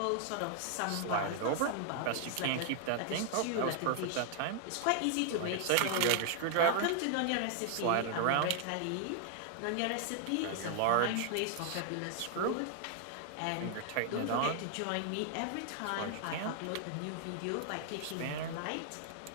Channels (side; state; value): both; different; correlation 0.00